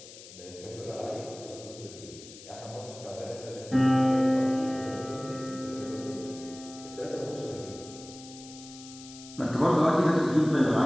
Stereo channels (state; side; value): noise; left; hiss, 17 dB below the sound